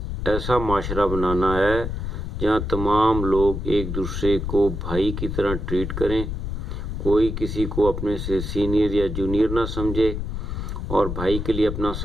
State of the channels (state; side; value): noise; left; rumble, 4 dB below the sound